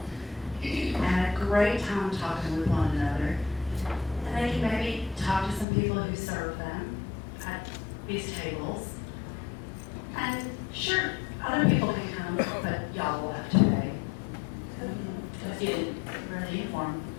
and a great time talking with one another. And they can maybe talk to some people who serve them at these tables. And sure, other people can come, but y'all will have to pay. Because you didn't wear the uniform.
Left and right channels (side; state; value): right; drops out; at 5.7 s